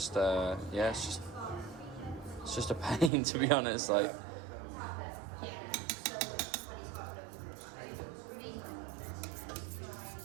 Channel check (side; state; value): left; drops out; at 3.1 s